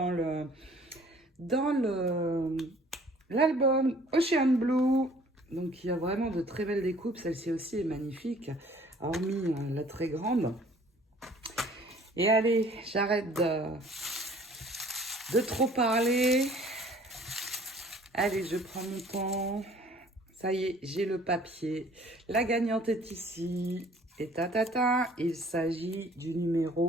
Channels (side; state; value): both; normal; correlation 0.54